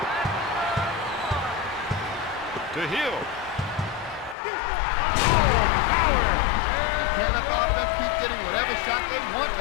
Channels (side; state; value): right; drops out; at 4.4 s